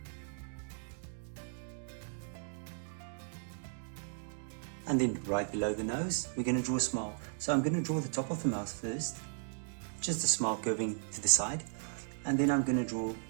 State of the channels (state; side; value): silent; left; digital silence